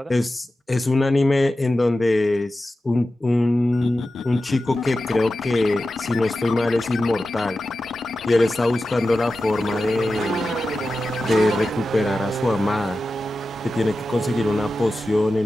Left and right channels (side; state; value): both; normal; correlation 0.93